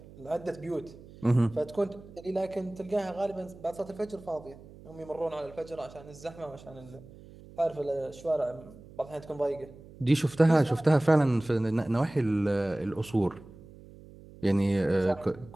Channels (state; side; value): noise; right; hum, 20 dB below the sound